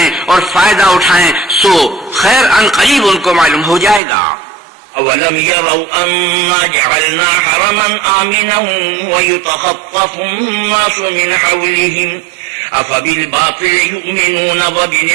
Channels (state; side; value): drops out; left; at 4.0 s